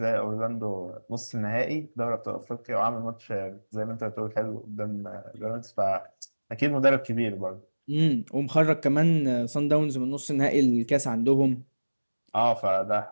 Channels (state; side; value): inverted; both; correlation -1.00